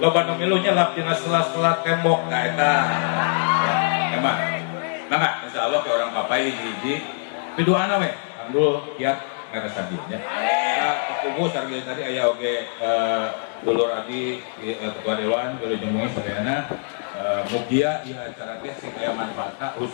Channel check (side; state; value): right; silent; digital silence